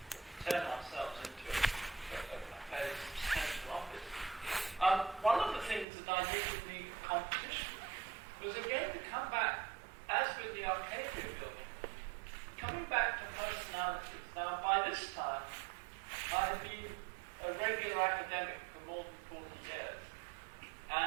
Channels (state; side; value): drops out; left; at 5.9 s